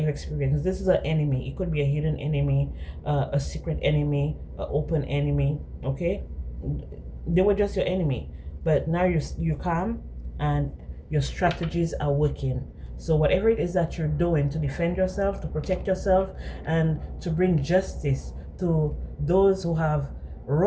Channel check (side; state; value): both; identical; correlation 1.00